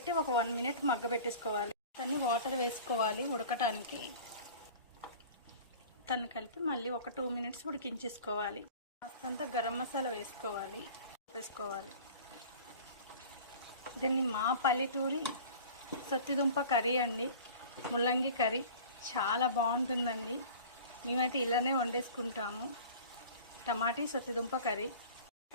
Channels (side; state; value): both; inverted; correlation -0.41